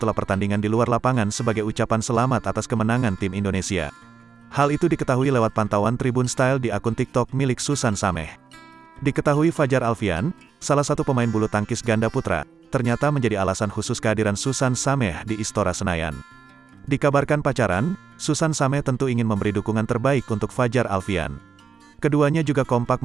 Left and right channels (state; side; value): quieter; left; 6.1 dB